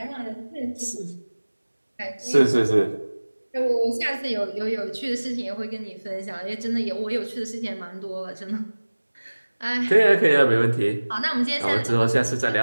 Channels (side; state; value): both; inverted; correlation -1.00